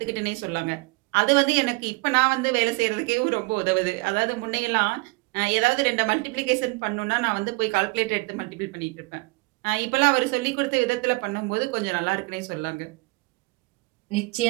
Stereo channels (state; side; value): quieter; left; 25.8 dB